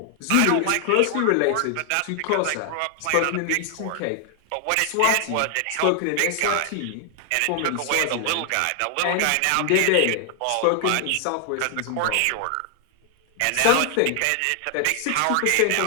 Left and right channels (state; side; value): different; both; correlation 0.00